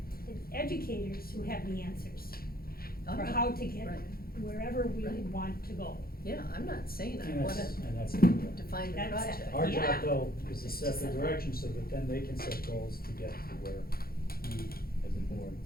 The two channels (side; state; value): right; late; 0.44 ms